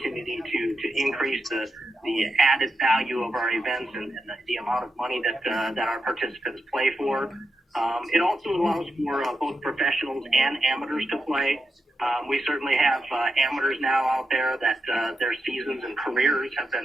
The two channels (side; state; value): both; normal; correlation 0.87